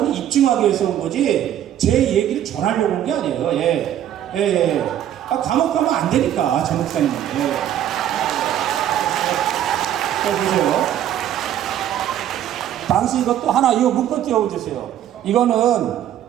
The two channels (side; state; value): left; quieter; 11.1 dB